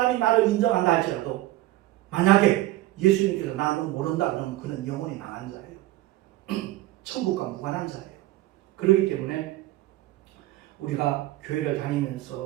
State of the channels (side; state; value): left; quieter; 16.1 dB